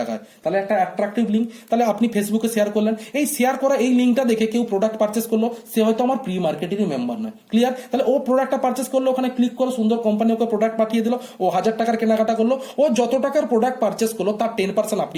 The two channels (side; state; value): both; identical; correlation 1.00